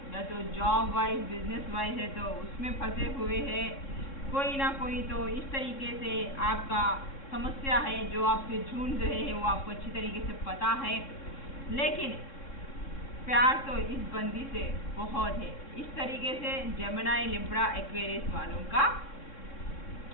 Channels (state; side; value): late; right; 3.6 ms